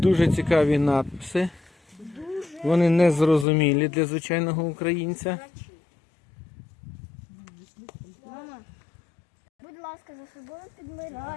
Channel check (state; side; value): drops out; right; at 3.5 s